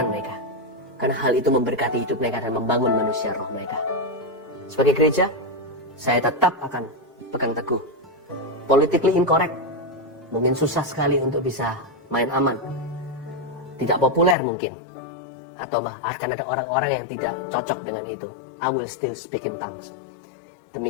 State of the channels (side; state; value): right; drops out; at 14.4 s